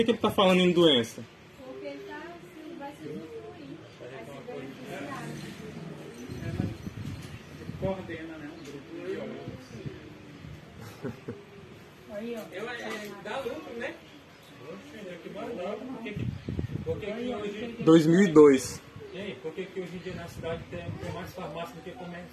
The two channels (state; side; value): identical; both; correlation 1.00